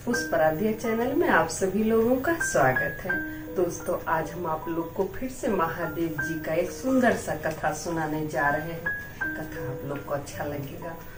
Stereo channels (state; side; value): identical; both; correlation 1.00